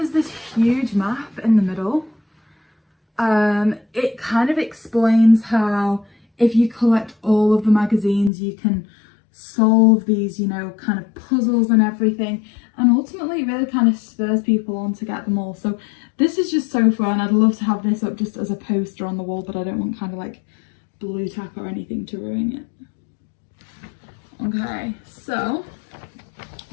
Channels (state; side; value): drops out; right; at 8.3 s